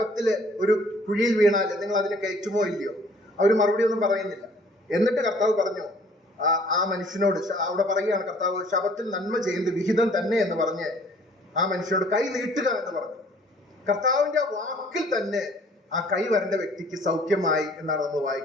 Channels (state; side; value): normal; both; correlation 0.56